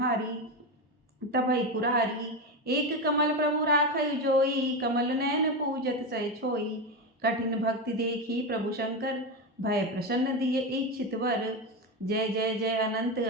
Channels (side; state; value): both; normal; correlation 0.15